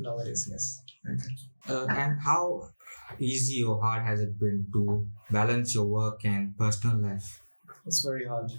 yes. Okay. And how easy or hard has it been to balance your work and personal life? It's very hard.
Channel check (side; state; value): both; inverted; correlation -1.00